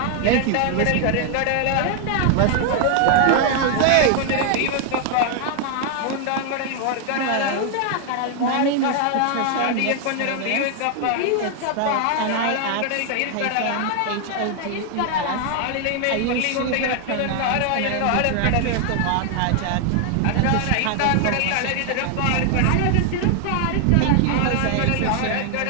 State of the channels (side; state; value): both; different; correlation 0.00